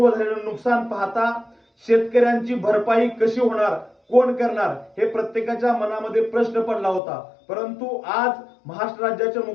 झालेलं नुकसान पाहता शेतकऱ्यांची भरपाई कशी होणार, कोण करणार हे प्रत्येकाच्या मनामध्ये प्रश्न पडला होता. परंतु आज महाराष्ट्र राज्याचे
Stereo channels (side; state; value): right; drops out; at 7.0 s